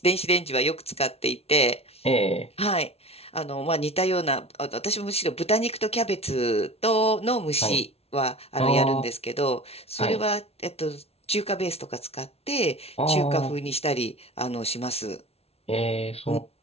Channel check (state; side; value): late; right; 0.30 ms